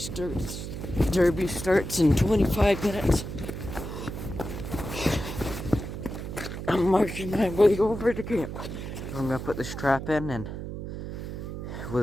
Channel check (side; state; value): right; noise; hum, 7 dB below the sound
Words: Derby starts in 25 minutes. I'm marching my way over to camp. I'm gonna put this trap in and